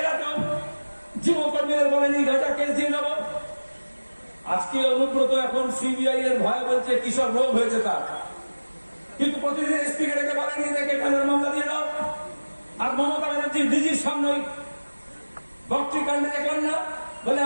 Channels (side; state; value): both; inverted; correlation -1.00